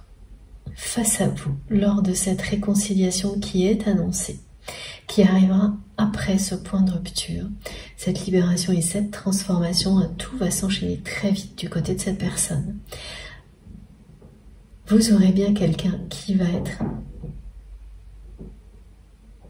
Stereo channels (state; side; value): identical; both; correlation 1.00